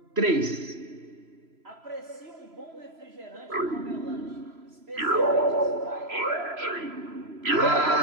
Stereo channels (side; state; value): left; late; 3.0 ms